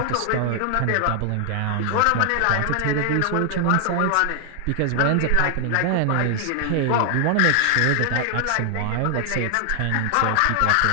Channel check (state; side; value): different; both; correlation 0.00